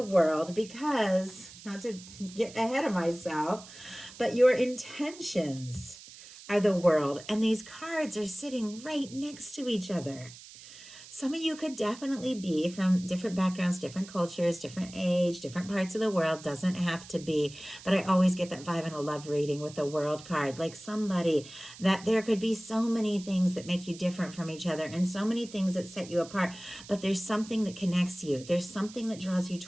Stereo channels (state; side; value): noise; right; hiss, 17 dB below the sound